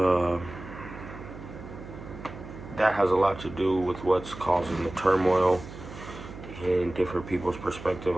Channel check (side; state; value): right; noise; hum, 13 dB below the sound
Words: that has a lot to do with what's causing the turmoil in different people's perspective.